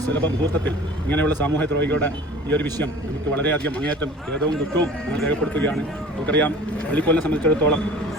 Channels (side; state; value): both; normal; correlation 0.43